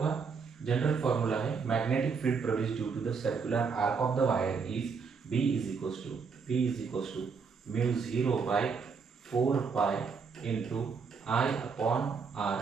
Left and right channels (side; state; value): left; quieter; 5.4 dB